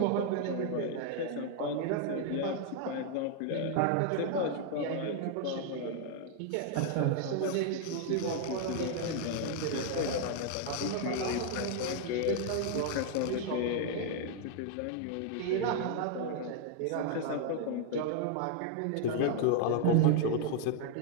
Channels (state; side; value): different; both; correlation 0.00